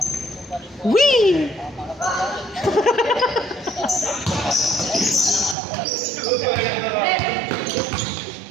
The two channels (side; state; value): left; drops out; at 5.6 s